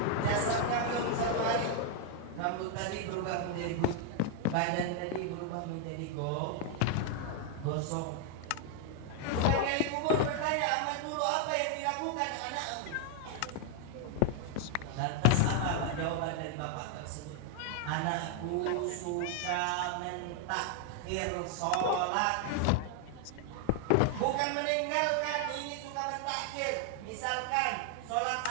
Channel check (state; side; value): different; both; correlation 0.00